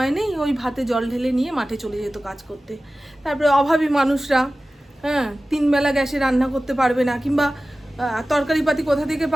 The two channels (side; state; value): both; normal; correlation 0.96